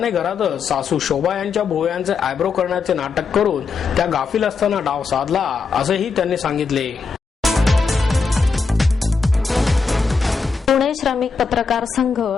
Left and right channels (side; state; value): right; quieter; 4.9 dB